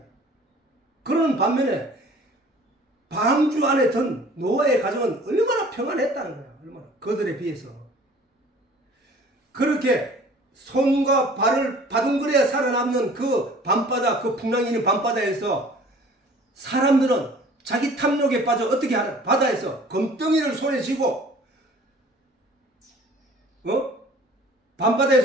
그러는 반면에 방주 안에 든 노아의 가정은 얼마나 평안했다는 거야. 얼마나 그들에 비해서. 그렇게 손과 발을 바둥거려야 살아남는 그 밤바다, 그 풍랑이 있는 밤바다에서 사람들은 자기 탐욕에 빠져 어떻게 하나? 바다에서 검덩이를 손에 쥐고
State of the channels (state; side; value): normal; both; correlation 0.50